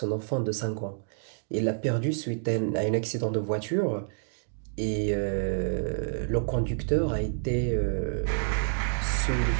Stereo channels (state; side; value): silent; left; digital silence